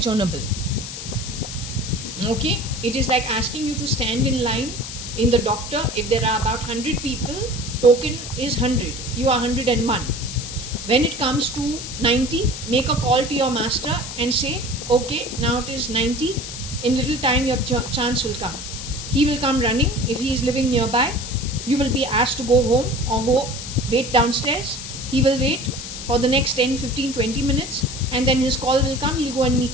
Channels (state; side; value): noise; left; hiss, 9 dB below the sound